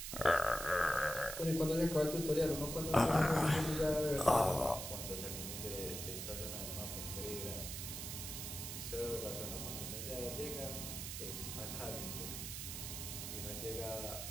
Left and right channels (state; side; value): noise; right; hiss, 6 dB below the sound